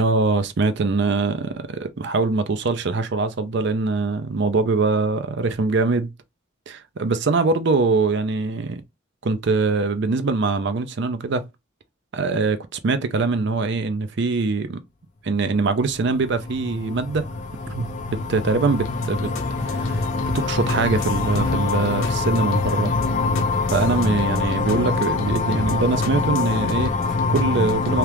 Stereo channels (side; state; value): both; normal; correlation 0.34